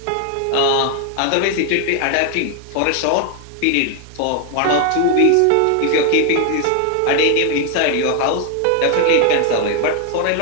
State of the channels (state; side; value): different; both; correlation 0.00